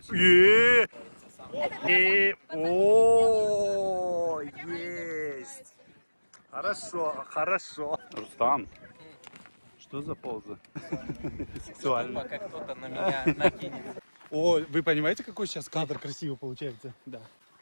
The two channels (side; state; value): both; inverted; correlation -1.00